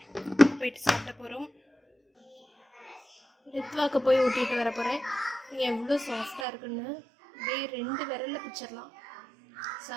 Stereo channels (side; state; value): left; drops out; at 6.5 s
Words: போயிட்டு சாப்பிட போகிறோம். ரித்வாக்கு போய் ஊட்டிட்டு வர போகிறேன். எவ்வளோ சாஃப்டாக இருக்குன்னு அப்படியே 2 விரலில் பிச்சிடலாம்.